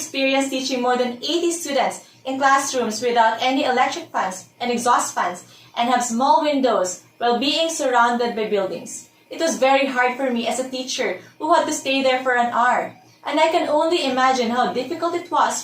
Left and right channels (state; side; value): identical; both; correlation 1.00